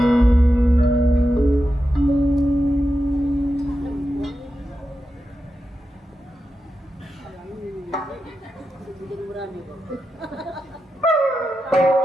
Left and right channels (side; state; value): both; normal; correlation 0.89